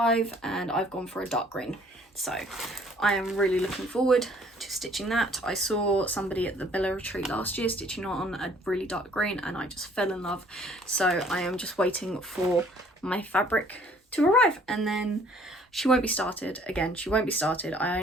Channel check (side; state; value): both; normal; correlation 0.58